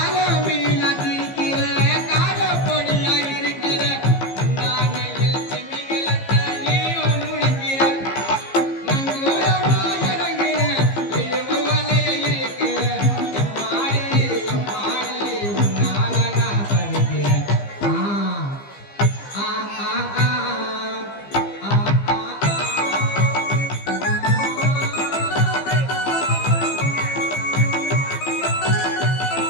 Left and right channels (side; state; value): right; late; 15 ms